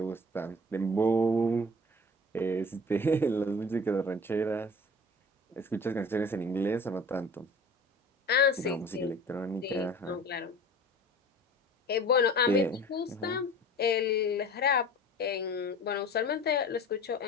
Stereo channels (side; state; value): both; normal; correlation 0.42